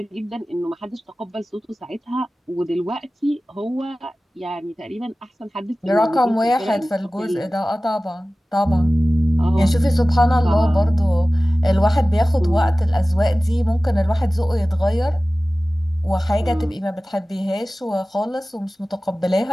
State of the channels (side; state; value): both; normal; correlation 0.97